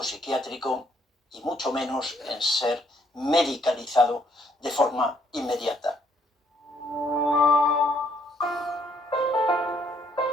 psiquiátrico y mucho menos en ser medicalizado de forma inmediata.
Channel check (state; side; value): normal; both; correlation 0.68